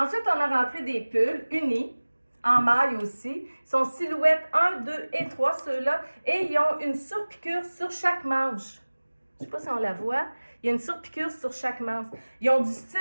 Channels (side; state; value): both; inverted; correlation -1.00